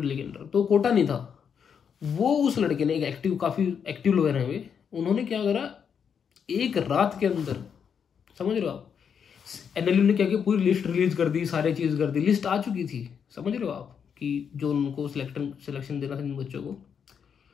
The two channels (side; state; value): right; quieter; 7.2 dB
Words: के अंदर तो कोटा नहीं था। वो उस लड़के ने, एक काफ़ी एक्टिव लॉयर हैं वे, उन्होंने क्या करा, एक रात के अंदर, समझ रहे हो आप, एनएलयू ने क्या किया, पूरी लिस्ट रिलीज कर दी, सारी चीज़ कर दी, लिस्ट आ चुकी थी, समझ रहे हो आप, कि जो उनको सिलेक्शन देना था इन बच्चों को।